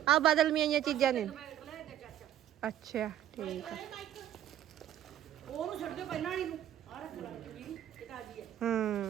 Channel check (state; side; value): quieter; left; 11.3 dB